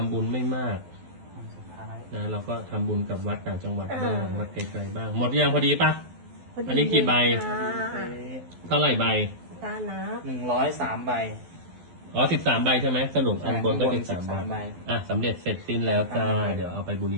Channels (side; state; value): left; late; 12 ms